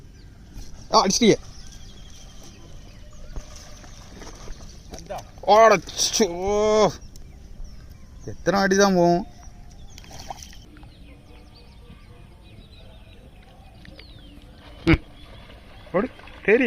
அடிச்சிட்டியே. எத்தனை அடி தான் போகும்?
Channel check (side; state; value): both; identical; correlation 1.00